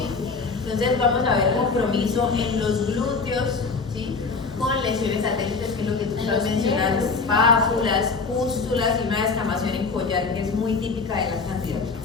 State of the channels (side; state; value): right; quieter; 4.5 dB